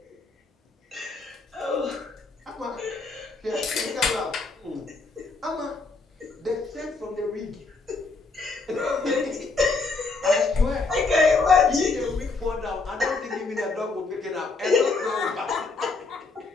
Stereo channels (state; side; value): quieter; right; 3.9 dB